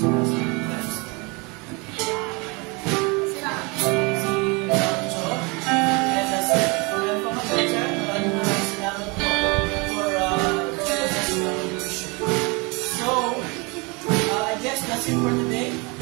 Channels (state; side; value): quieter; left; 28.7 dB